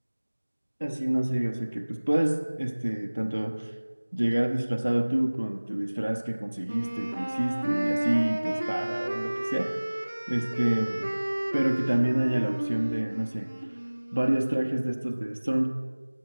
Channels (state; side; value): inverted; both; correlation -1.00